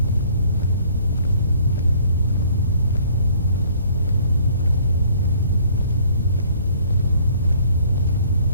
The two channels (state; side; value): inverted; both; correlation -0.58